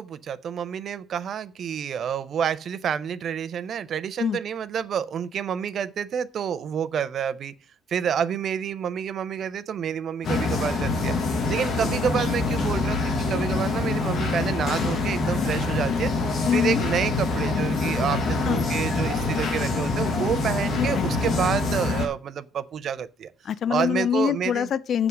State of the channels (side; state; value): both; normal; correlation 0.64